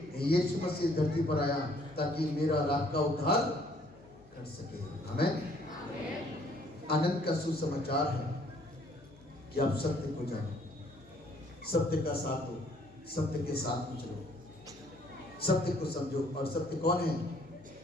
यीशु मसीह धरती पर आया ताकि मेरा और आपका उद्धार कर सके। आमीन। आनंद का सुसमाचार है कि आप सत्य को जानो, सत्य का साथ दो, सत्य के साथ में चलो, सत्य को समझो। और सत्य कौन है?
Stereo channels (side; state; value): left; noise; hum, 25 dB below the sound